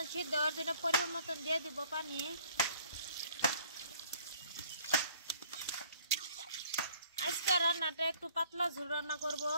সিদ্ধ হওয়ার জন্য পরিমাণ মতন দিয়ে দিব পানি। আজকে রান্নাটা একটু পাতলা ঝোল রান্না করব।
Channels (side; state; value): both; inverted; correlation -0.57